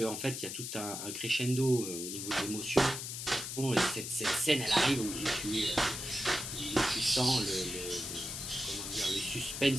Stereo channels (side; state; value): left; noise; hiss, 6 dB below the sound